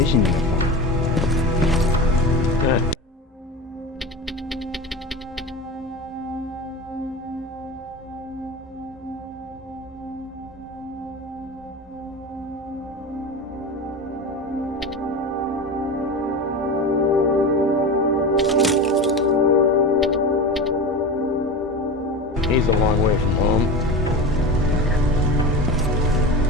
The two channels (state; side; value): normal; both; correlation 0.27